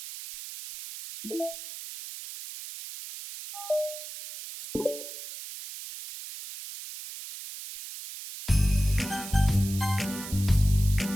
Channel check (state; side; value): noise; right; hiss, 11 dB below the sound